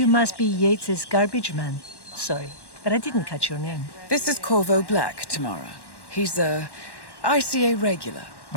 must be Yates's garbage man. Sorry, but I didn't catch your name. This is Corvo Black, Tamara. He's a ICA regular.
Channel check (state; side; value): late; right; 1.1 ms